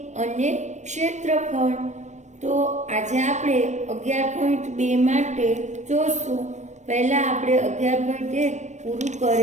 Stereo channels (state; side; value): late; left; 0.34 ms